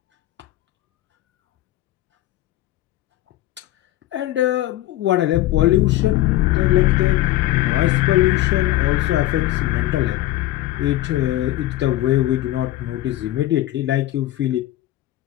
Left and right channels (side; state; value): right; quieter; 15.3 dB